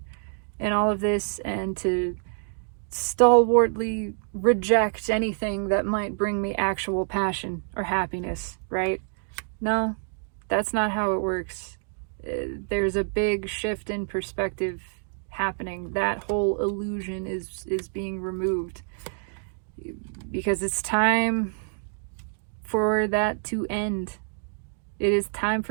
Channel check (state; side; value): silent; left; digital silence